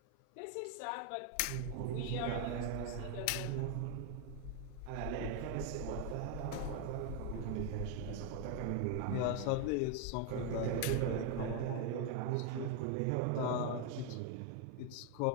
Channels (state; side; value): different; both; correlation 0.01